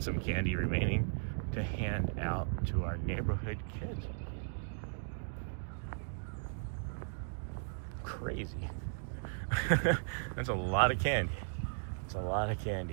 some candy remaining to hand out to our neighborhood kids. Crazy. That's a lot of candy. It's a lot of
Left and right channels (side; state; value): left; silent; digital silence